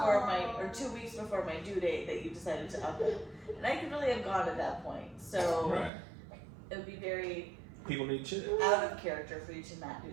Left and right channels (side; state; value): left; drops out; at 5.9 s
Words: weeks before my due date that you decided to up it. And I could really have gone at that point. So Right. it would be very People need chicks. out of character for you to not do